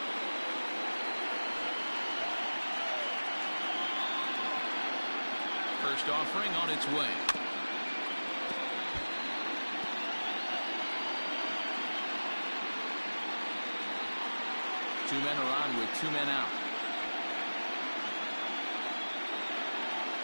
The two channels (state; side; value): inverted; both; correlation -1.00